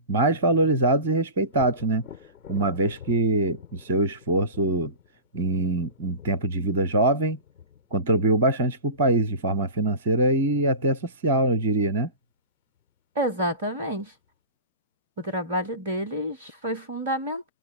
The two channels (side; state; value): both; inverted; correlation -0.30